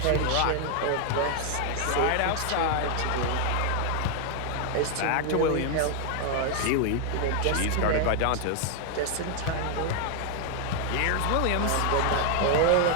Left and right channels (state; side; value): different; both; correlation 0.00